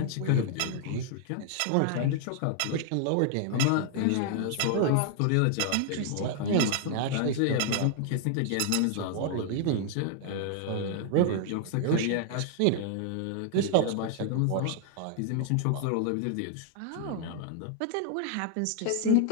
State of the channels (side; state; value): both; different; correlation 0.00